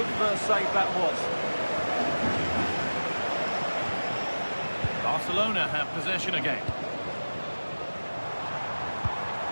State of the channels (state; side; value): inverted; both; correlation -1.00